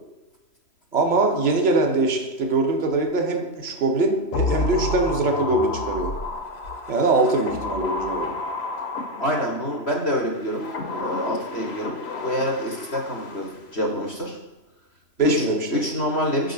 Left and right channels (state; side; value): late; right; 3.0 ms